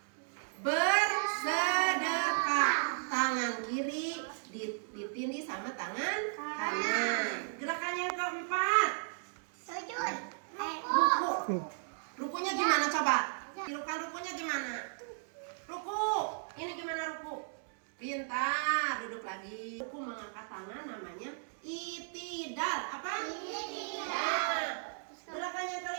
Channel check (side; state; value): left; silent; digital silence